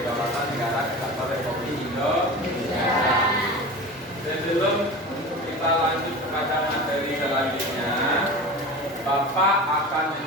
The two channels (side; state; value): both; normal; correlation 0.32